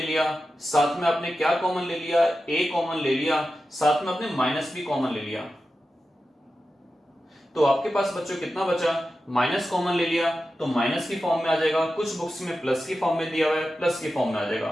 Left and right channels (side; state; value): both; normal; correlation 0.92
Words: लिया, साथ में आपने क्या कॉमन ले लिया, a कॉमन ले लिया, साथ में आपने माइनस भी कॉमन ले लिया। तो आपके पास बच्चों कितना बचा, माइनस कॉमन ले लिया तो माइनस की फॉर्म में आ जाएगा, कुछ बुक्स में प्लस की फॉर्म में दिया हुआ है, प्लस की फॉर्म में आ